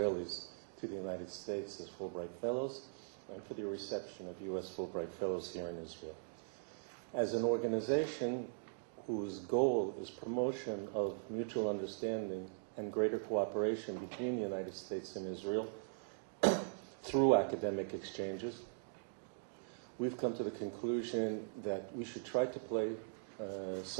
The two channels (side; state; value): left; silent; digital silence